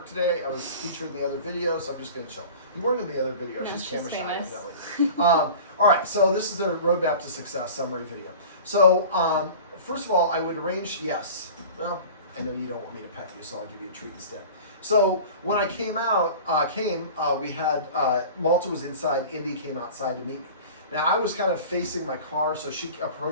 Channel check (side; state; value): both; inverted; correlation -0.39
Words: today. I was featured in the other video, so I'm just going to chill. You weren't in the other video. No, she's camera famous. shy. All right, so this is the roadmap to success summary video. So first of all, I would arrange, yes. Well, I know you don't want me to pet you, so I'll give you a treat instead. So when I we had, Malta was inside, Indy came outside to meet me. Now I was kind of facing my car, so she